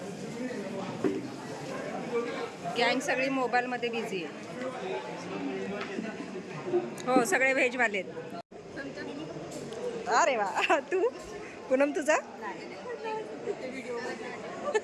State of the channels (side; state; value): both; identical; correlation 1.00